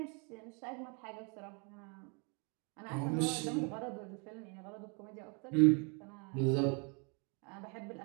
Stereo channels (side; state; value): left; quieter; 34.6 dB